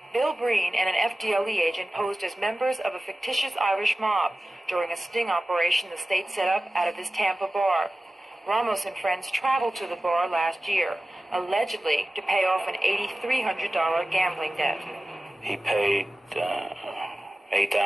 Bill Breen and an FDLE agent posed as members of a fictitious Irish mob during a sting operation the state set up out of this Tampa bar. Ramos and friends traveled to the bar last year, allegedly to pay off an $8,300 gambling debt. He paid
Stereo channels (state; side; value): normal; both; correlation 0.96